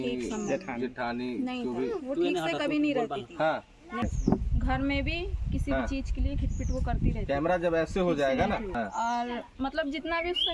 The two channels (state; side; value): identical; both; correlation 1.00